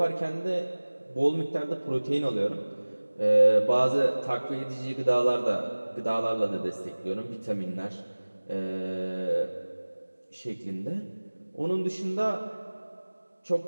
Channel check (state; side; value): inverted; both; correlation -1.00